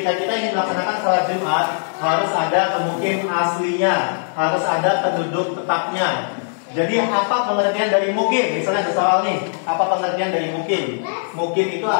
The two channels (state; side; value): silent; right; digital silence